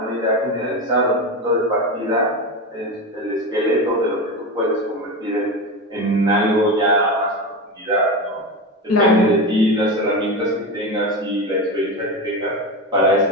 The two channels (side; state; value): both; normal; correlation 0.20